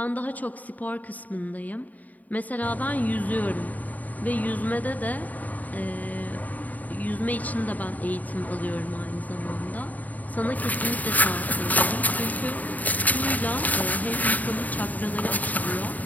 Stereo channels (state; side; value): late; right; 0.077 ms